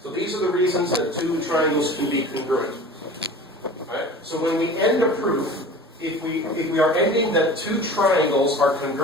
So these are the reasons that 2 triangles can be congruent. Alright? So when we end a proof, if we are ending that 2 triangles are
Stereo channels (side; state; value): both; normal; correlation 0.39